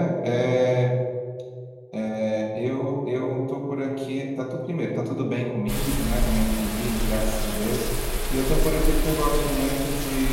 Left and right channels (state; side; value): identical; both; correlation 1.00